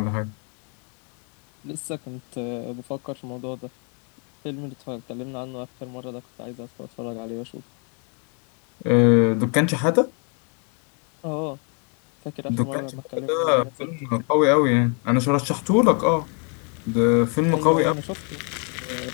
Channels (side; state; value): right; quieter; 39.1 dB